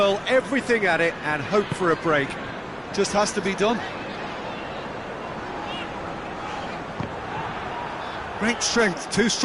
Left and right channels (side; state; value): both; identical; correlation 1.00